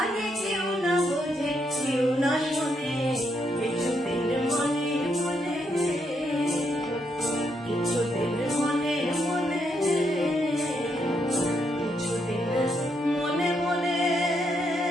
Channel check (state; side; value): normal; both; correlation 0.78